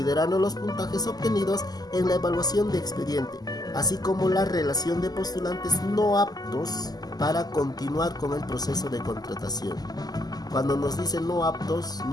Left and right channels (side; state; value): right; late; 0.19 ms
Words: los puntajes obtenidos en la evaluación de expediente, así como la relación de postulantes no aptos para continuar con el proceso de contratación. Cuando nos dicen no aptos,